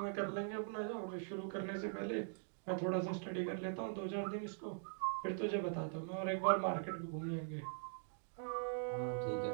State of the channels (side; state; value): left; silent; digital silence